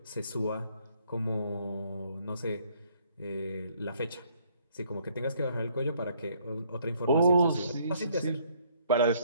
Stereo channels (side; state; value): both; inverted; correlation -0.65